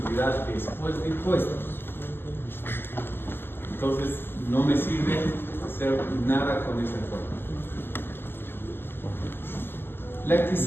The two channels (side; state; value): right; late; 0.10 ms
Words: después de impuestos. Entonces, no me sirve hacer nada con esa cuenta. La que